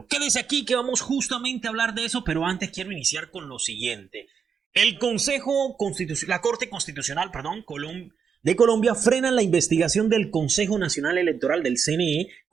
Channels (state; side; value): quieter; left; 6.6 dB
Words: Quédese aquí que vamos justamente a hablar de eso, pero antes quiero iniciar con lo siguiente. El Consejo Constitucional, la Corte Constitucional, perdón, de Colombia frenan la investigación del Consejo Nacional Electoral del CNE